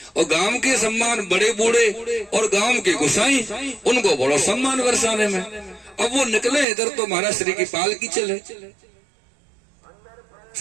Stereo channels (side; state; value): left; drops out; at 6.7 s